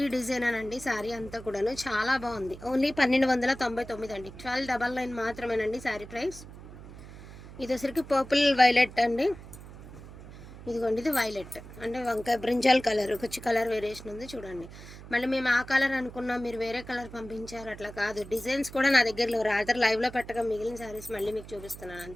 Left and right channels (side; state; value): right; noise; hum, 15 dB below the sound